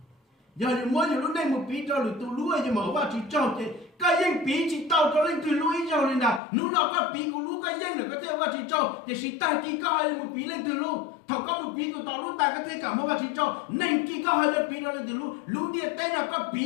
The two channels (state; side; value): drops out; right; at 6.4 s